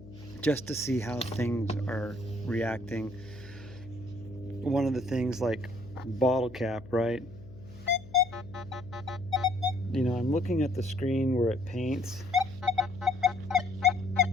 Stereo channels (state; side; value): noise; left; hum, 18 dB below the sound